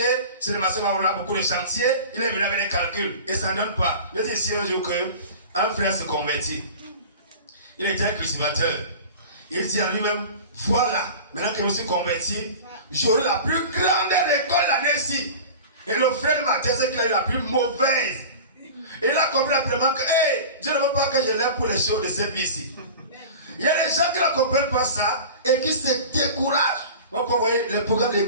si les marchés vont avoir beaucoup de chantiers, il est venu avec des calculs et ça ne donne pas. Je dis ici un jour qu'un frère se convertit. Il était un cultivateur. Il dit à lui-même, voilà, maintenant que je suis converti, j'aurai la plus grande récolte l'année-ci. Et le frère de ma thèse, c'est qu'il a eu la plus mauvaise. Et il a compris rapidement que, Dieu ne veut pas que je l'aime pour les choses de cette vie-ci. Il y a des gens qui ne comprennent pas ça et qui se découragent. Donc, vous voyez, le programme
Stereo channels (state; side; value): inverted; both; correlation -0.36